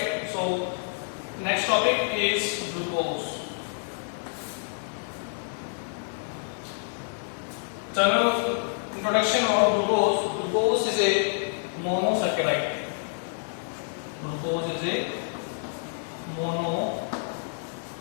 So next topic is glucose. General introduction of glucose. Glucose is a monosaccharide. Glucose is a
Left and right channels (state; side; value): silent; right; digital silence